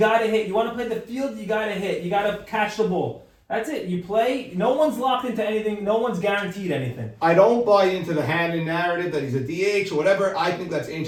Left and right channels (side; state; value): both; identical; correlation 1.00